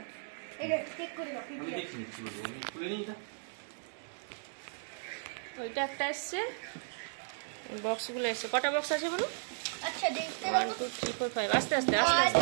এটা চেক করে দাও। আমি দেখছি নিচ্ছি বলবো, আমি খুলে নিই এটা। ওইটা একটা এসছে, বক্সগুলো এসছে। কটা বক্স আছে বলো? আচ্ছা দেখতে 1 2 3 4 5। আস্তে আস্তে আস্তে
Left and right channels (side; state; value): left; silent; 54 dB below the other